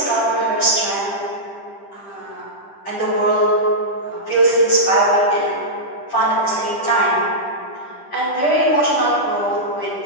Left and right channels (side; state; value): right; late; 10 ms